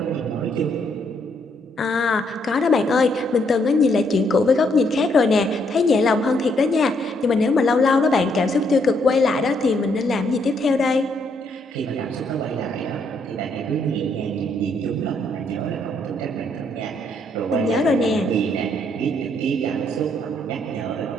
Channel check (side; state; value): both; normal; correlation 0.72